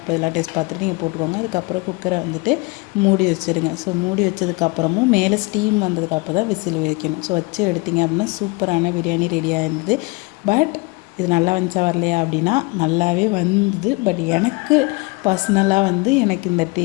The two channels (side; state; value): right; quieter; 25.5 dB